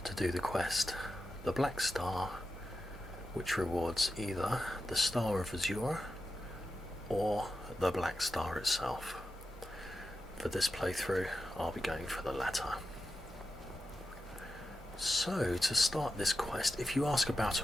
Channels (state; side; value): normal; both; correlation 0.91